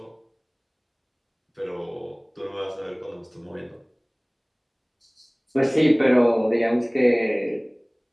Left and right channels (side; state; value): both; identical; correlation 1.00